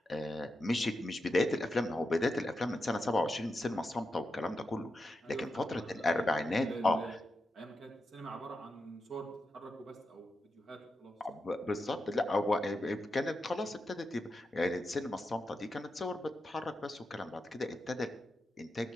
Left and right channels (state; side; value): normal; both; correlation 0.88